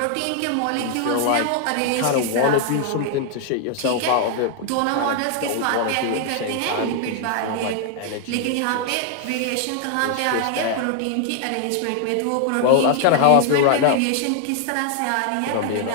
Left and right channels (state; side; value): different; both; correlation 0.00